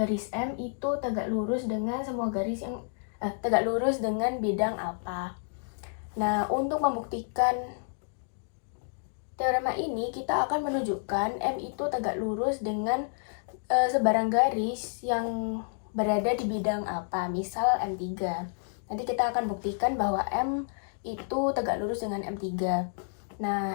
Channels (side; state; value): right; silent; digital silence